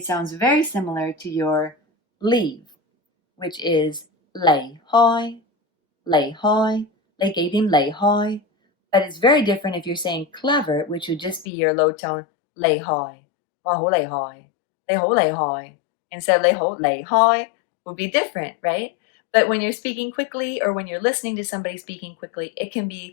sounds very similar to your leave, which is 離開, 離開, 你幾點離開? But it's very different if you're saying clever, which would just be your low tone 厲害. 哇，好厲害. 你好厲害. Instead of 你好厲害 would be different, right? But when you're speaking quickly or when you're listening to somebody speaking quickly, it can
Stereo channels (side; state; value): right; drops out; at 11.5 s